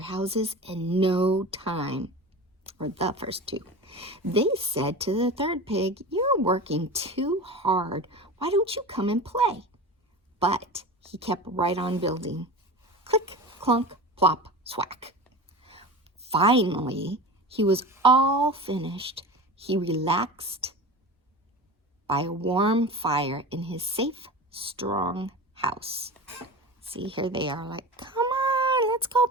houses in no time. Or the first two. They said to the third pig, "You're working too hard. Why don't you come and play?" But he kept right on building. Click, clunk, plop, swack. Finally, he was all finished. He relaxed by a warm fire in his safe, strong house. See, here they are like, "Come on, let's go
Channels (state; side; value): normal; both; correlation 0.31